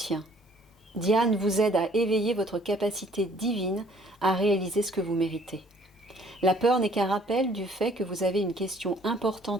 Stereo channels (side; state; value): both; normal; correlation 0.59